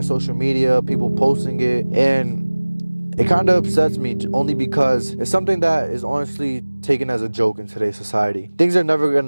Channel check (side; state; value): both; inverted; correlation -1.00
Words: social media, people posting it, and it kind of upsets me only because it's something that is honestly taken as a joke in today's society. Things are never going